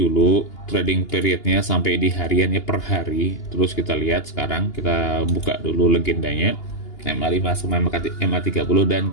trading periodnya sampai di hariannya per hari. Terus kita lihat sekarang, kita buka dulu legendanya. MA5 sama MA30 dan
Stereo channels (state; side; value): late; right; 2.8 ms